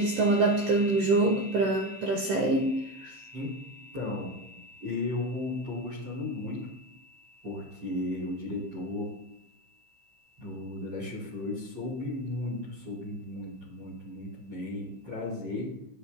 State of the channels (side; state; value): left; late; 15 ms